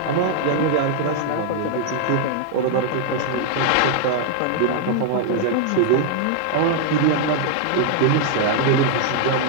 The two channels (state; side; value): different; both; correlation -0.01